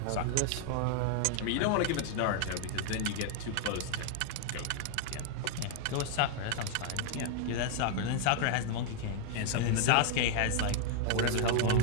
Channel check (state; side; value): different; both; correlation 0.00